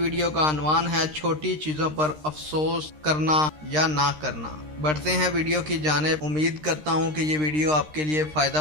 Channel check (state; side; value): late; left; 13 ms